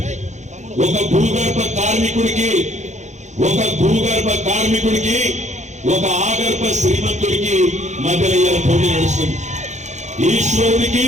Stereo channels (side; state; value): left; late; 0.34 ms